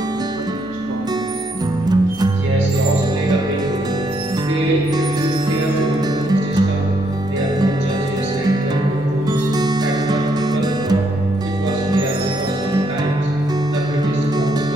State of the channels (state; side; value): noise; left; hum, 20 dB below the sound